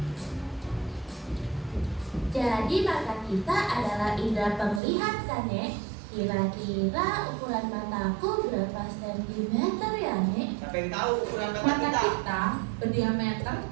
Jadi mata kita adalah indera penglihat kan, Nek? Kira-kira ukuran mataku berapa sentimeter ya, Nek? Siapa yang tahu ukuran mata Mata kita? kita berdiameter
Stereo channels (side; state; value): left; drops out; at 4.8 s